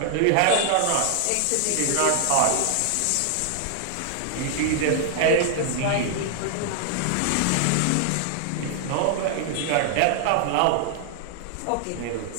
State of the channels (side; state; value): both; different; correlation 0.00